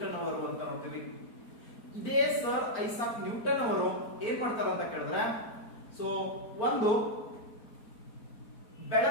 ಅವರು ಅಂತ ನೋಡ್ತೀವಿ. ಇದೇ ಸರ್ ಐಸಾಕ್ ನ್ಯೂಟನ್ ಅವರು ಏನ್ ಮಾಡ್ತಾರ ಅಂತ ಕೇಳಿದ್ರೆ, ಒಂದು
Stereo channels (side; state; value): right; late; 4.4 ms